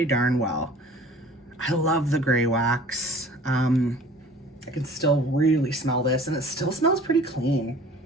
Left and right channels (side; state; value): both; normal; correlation 0.47